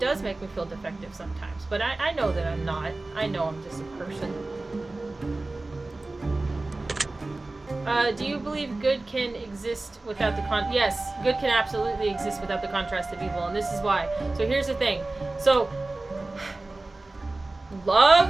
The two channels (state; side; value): quieter; left; 3.1 dB